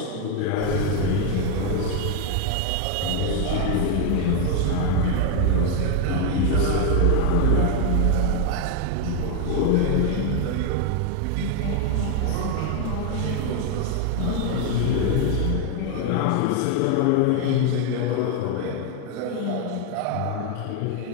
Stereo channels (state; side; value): different; both; correlation 0.01